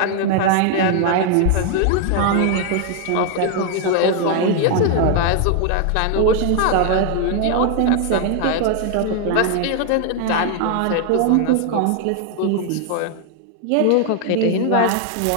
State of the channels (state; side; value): different; both; correlation 0.00